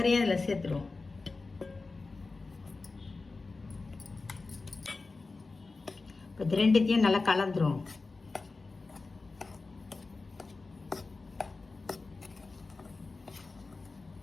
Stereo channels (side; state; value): right; quieter; 3.8 dB